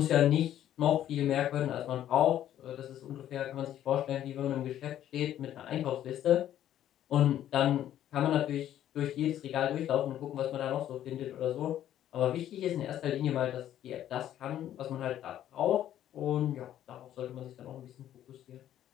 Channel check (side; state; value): right; quieter; 11.6 dB